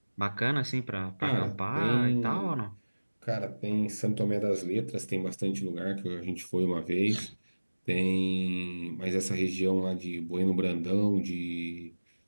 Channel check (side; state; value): both; inverted; correlation -1.00